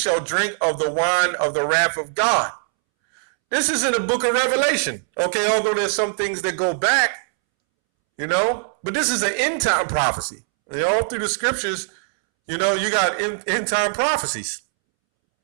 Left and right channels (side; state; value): left; silent; 65 dB below the other